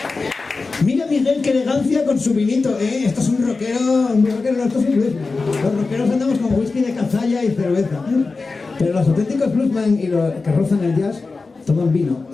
Mira Miguel, qué elegancia con su vinito, ¿eh? Esto es un rockero, no, esto es un bluesman. Los rockeros andamos con whisky de cazalla y cerveza. Pero los auténticos bluesman y los que rozan el jazz toman vino.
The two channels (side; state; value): right; quieter; 4.0 dB